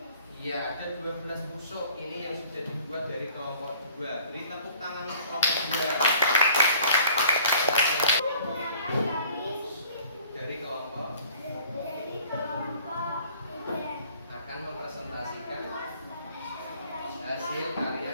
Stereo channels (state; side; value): inverted; both; correlation -0.54